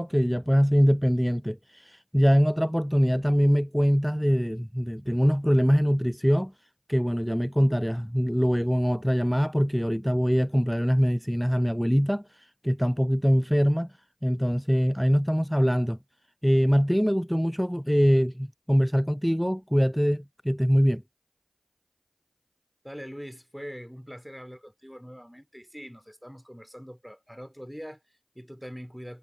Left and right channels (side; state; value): both; identical; correlation 1.00